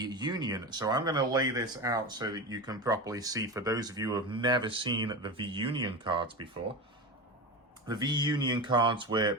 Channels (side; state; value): both; normal; correlation 0.23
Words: So I'm going to lay this out so that you can properly see, for those of you who have never seen the V-Union cards before. The V-Union cards were